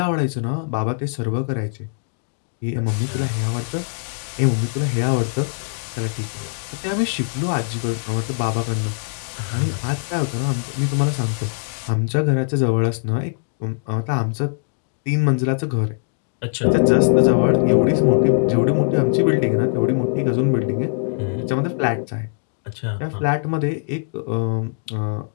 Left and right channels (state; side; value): silent; right; digital silence